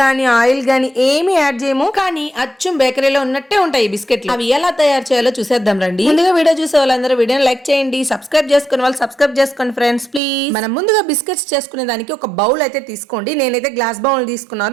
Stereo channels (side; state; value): left; drops out; at 10.2 s